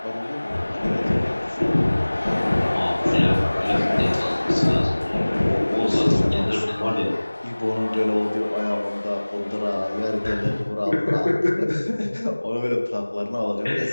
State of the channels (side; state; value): both; inverted; correlation -1.00